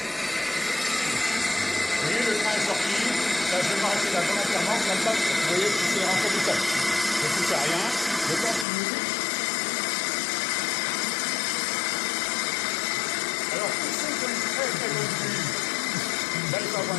voyez, le train est sorti, là, je vais m'arrêter là volontairement, comme ça, vous voyez, c'est rentré tout seul. Je ne touche à rien, je continue. Alors, pour ceux qui ont une très très bonne vue, là, il faut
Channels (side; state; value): right; drops out; at 8.7 s